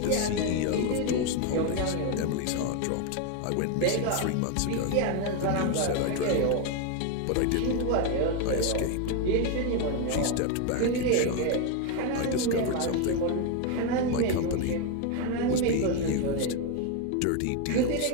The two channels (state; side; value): different; both; correlation 0.02